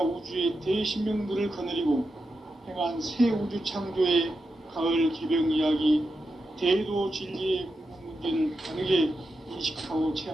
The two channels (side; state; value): both; normal; correlation 0.88